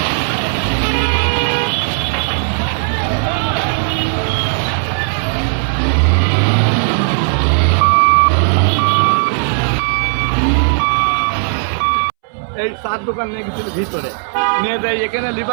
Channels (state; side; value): silent; left; 68 dB below the other